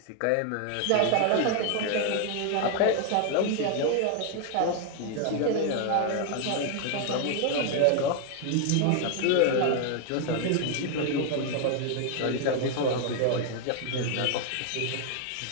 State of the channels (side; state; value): both; different; correlation 0.00